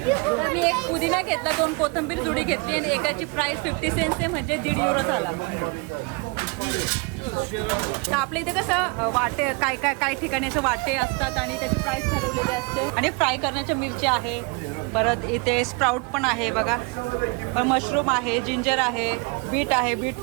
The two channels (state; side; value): quieter; left; 29.8 dB